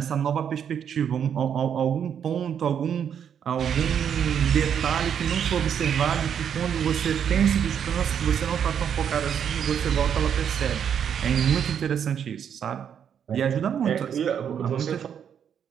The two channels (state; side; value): quieter; left; 8.3 dB